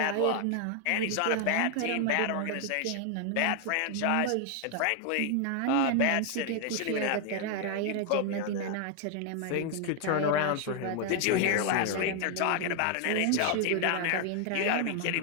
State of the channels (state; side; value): different; both; correlation 0.00